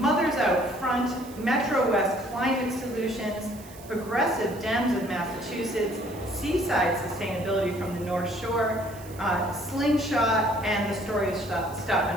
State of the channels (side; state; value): right; noise; hiss, 20 dB below the sound